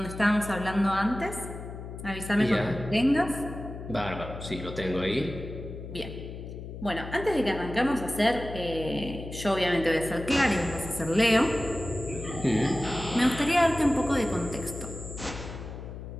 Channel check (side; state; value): left; noise; hum, 10 dB below the sound